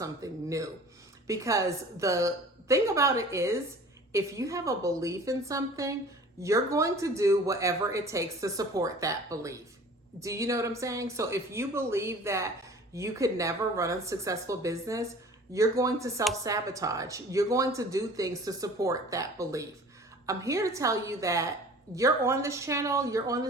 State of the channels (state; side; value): normal; both; correlation 0.45